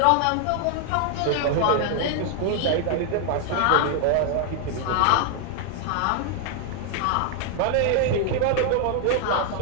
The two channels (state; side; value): different; both; correlation 0.00